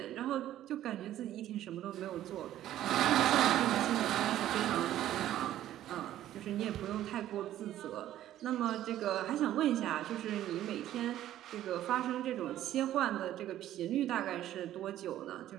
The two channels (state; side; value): quieter; left; 12.8 dB